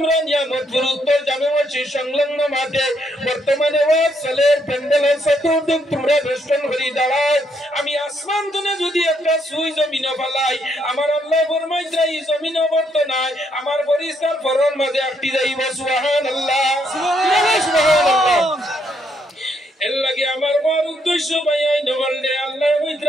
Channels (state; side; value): normal; both; correlation 0.73